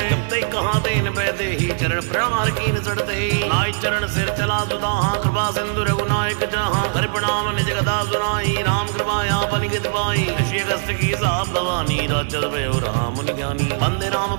जब तक कहा तेन पैदे ही चरण प्रहार कीन चढ़ते ही नाई चरण सिर चला सुधा कृपा सिंधु रघुनायक जहाँ हरि प्रणाम निज गदा सुनाई राम कृपा यापन गित पाई ऋषि अगस्त्य की साप भवानी राजद भयो राम मुनि ज्ञानी वंदे राम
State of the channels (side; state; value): left; silent; digital silence